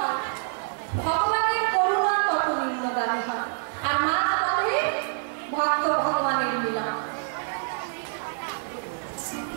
ভগবানের করুণা তত নিম্নগামী হয়। আর মাঝ পথে ভক্ত ভগবানের মিলন।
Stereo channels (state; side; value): silent; left; 61 dB below the other